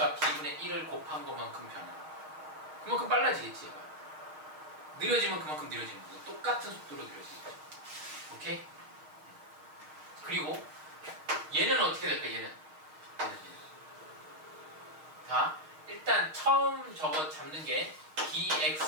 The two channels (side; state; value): left; late; 6.5 ms